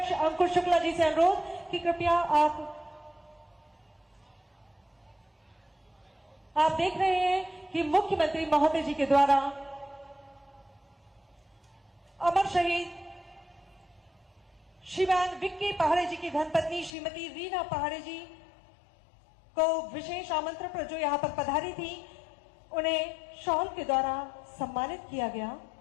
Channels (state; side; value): drops out; right; at 16.9 s